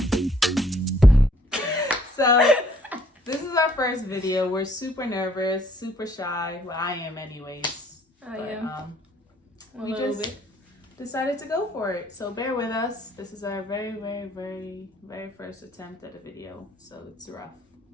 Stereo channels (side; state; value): both; normal; correlation 0.62